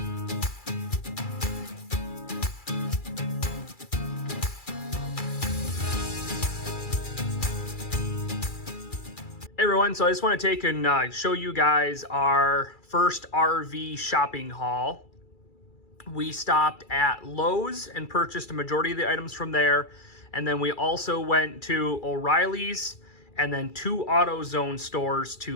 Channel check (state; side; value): late; right; 2.3 ms